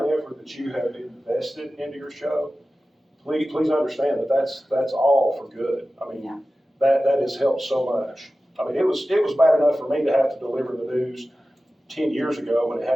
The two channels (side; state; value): both; normal; correlation 0.95